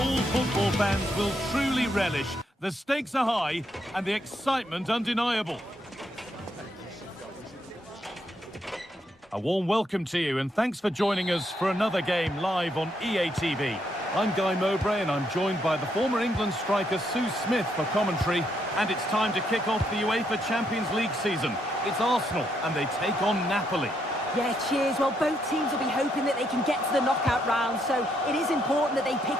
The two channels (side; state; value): both; normal; correlation 0.76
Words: football fans will truly relish. The stakes are high and the excitement undeniable. A warm welcome to you and thanks for joining us for another game live on EA TV. I'm Guy Mowbray and I'm joined by the former England striker Sue Smith for commentary. And it's time to kick off the UEFA Champions League season. It's Arsenal and they take on Napoli. Yeah, cheers. Well, both teams will be hoping that they can get to the knockout round, so it is important that they